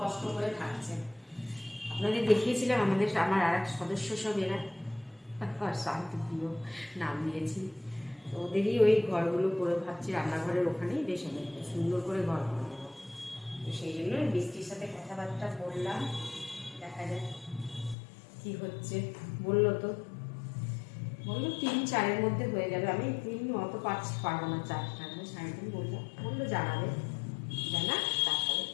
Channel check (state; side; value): drops out; right; at 17.9 s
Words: কষ্ট করে থাকছে। আপনাদের দেখিয়েছিলাম আমার আর এক সদস্য সব এরা শান্তিপ্রিয় নাম দিয়েছি। তো ওদেরই ওই ঘরগুলো করে ভাবছি রান্নাঘরের ওখানেই বেশ সুন্দর করে ঘর করে দেবো। তো সেই জন্য বৃষ্টির সাথে কথাবার্তা বললাম, দেখা যাক কি হচ্ছে। বললো 3-4-এর মধ্যে হয়ে যাবে। আমি 3 অত পারবো না, 4টা 3.5 বললো জানাবে, তারপরে